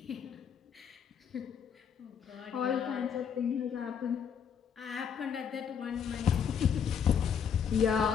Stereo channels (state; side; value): quieter; right; 7.4 dB